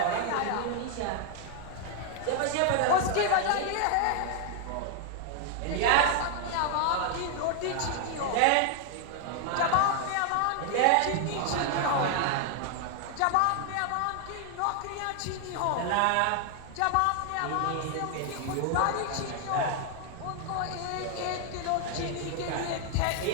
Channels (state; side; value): different; both; correlation 0.00